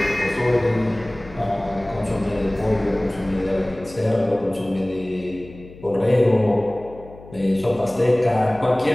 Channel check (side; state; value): left; noise; hum, 19 dB below the sound